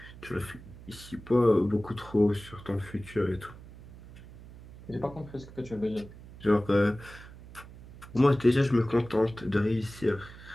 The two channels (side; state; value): right; noise; hum, 18 dB below the sound